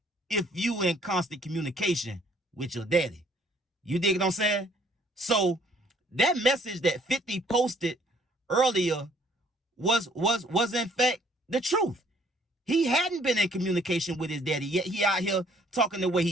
if you in constant communication with your daddy. You dig what I'm saying? So that message that 50 posted earlier was in fact the truth. He hadn't been in communication with his daddy, yet he out here talking the way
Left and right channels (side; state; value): both; normal; correlation 0.61